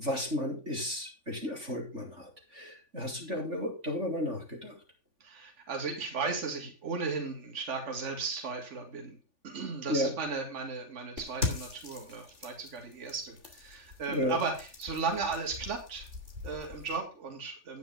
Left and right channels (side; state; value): left; late; 3.5 ms